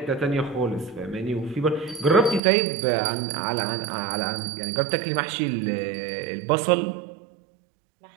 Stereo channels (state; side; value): drops out; left; at 2.4 s